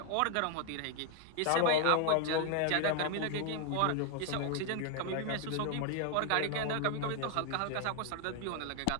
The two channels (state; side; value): different; both; correlation 0.00